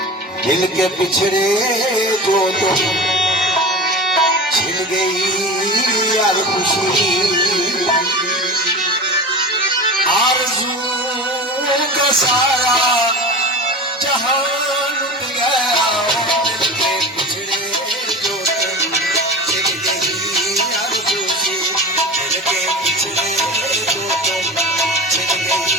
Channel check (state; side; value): normal; both; correlation 0.32